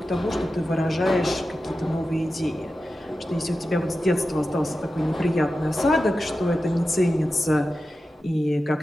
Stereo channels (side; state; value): both; normal; correlation 0.92